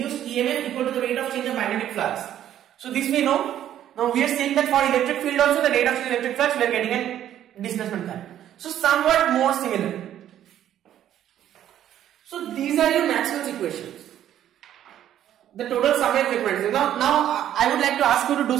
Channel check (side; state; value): left; quieter; 11.3 dB